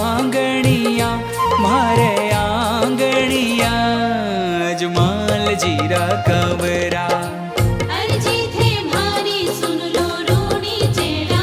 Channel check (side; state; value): both; identical; correlation 1.00